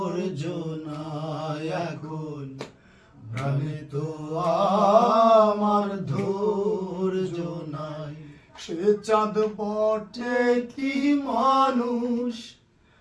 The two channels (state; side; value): identical; both; correlation 1.00